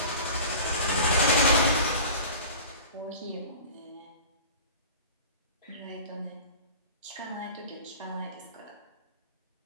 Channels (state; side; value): inverted; both; correlation -0.38